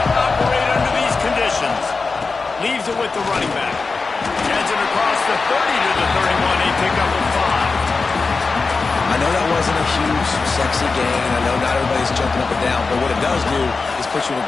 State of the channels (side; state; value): right; quieter; 4.2 dB